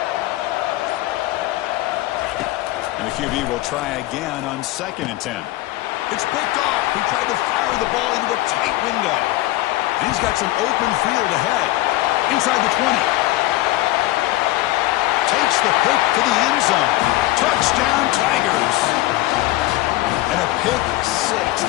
And the QB will try again on 2nd and 10. It's picked off. He tried to fire the ball into a tight window. And he's got some open field ahead. Inside the 20. Takes the pick to the end zone. Touchdown, Tigers. And a pick six.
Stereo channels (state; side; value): quieter; right; 17.5 dB